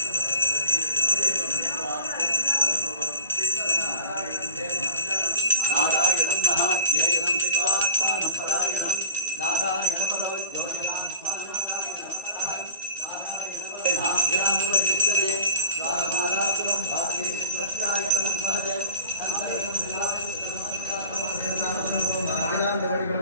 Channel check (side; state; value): both; inverted; correlation -0.34